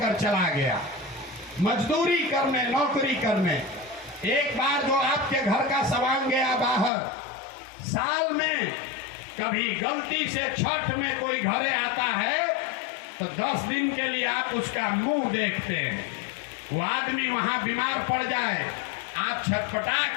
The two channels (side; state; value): right; drops out; at 6.9 s